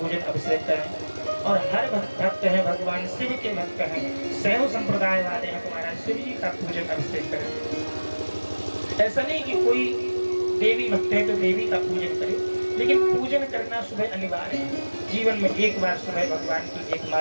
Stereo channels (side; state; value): both; inverted; correlation -1.00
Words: अभिषेक करें। और हर भक्त है भगवान शिव के भक्त हैं, शैव संप्रदाय वाले हैं, तुम्हारा शिव जी का पूजन अभिषेक करें। ऐसा नहीं कि कोई देवी भक्त है तो देवी का पूजन करे, लेकिन पूजन करना सुबह अनिवार्य है। जीवन में एक बार सुबह भगवान की एक